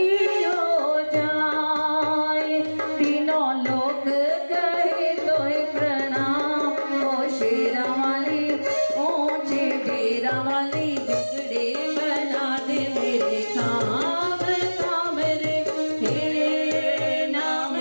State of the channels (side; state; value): both; inverted; correlation -1.00